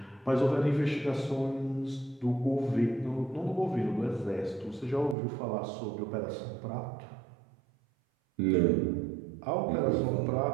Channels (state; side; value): drops out; left; at 5.2 s